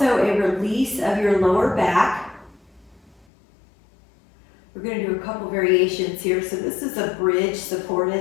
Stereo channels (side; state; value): right; drops out; at 3.2 s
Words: a release of your lower back. We're going to do a couple variations here. So this is a bridge